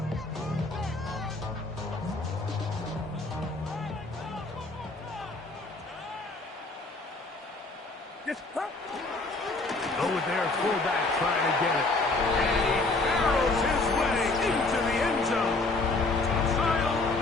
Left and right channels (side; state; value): right; quieter; 3.3 dB